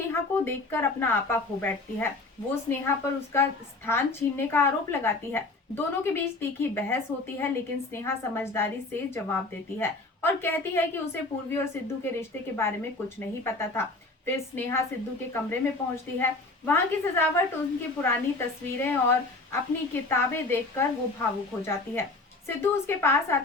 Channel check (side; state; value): right; quieter; 3.2 dB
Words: को देखकर अपना आपा खो बैठती है। वो स्नेहा पर उसका स्थान छीनने का आरोप लगाती है। दोनों के बीच तीखी बहस होती है, लेकिन स्नेहा समझदारी से जवाब देती है और कहती है कि उसे पूर्वी और सिद्धू के रिश्ते के बारे में कुछ नहीं पता था। फिर स्नेहा सिद्धू के कमरे में पहुंचती है। वहां की सजावट, उनकी पुरानी तस्वीरें और अपनी किताबें देखकर वो भावुक हो जाती है। सिद्धू उसके पास